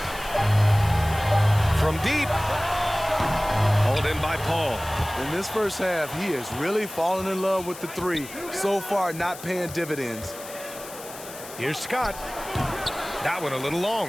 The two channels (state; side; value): noise; left; hiss, 14 dB below the sound